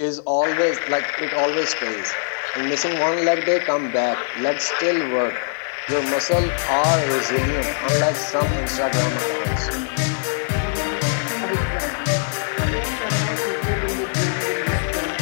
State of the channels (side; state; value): right; silent; 64 dB below the other